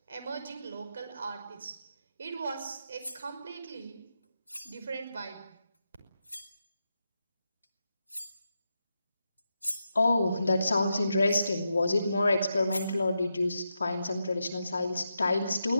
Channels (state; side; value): inverted; both; correlation -0.86